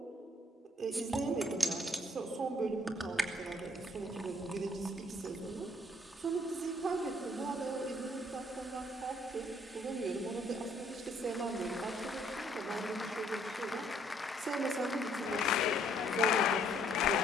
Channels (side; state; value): both; normal; correlation 0.64